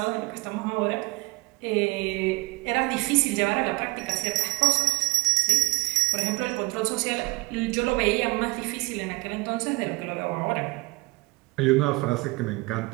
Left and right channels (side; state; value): left; quieter; 23.0 dB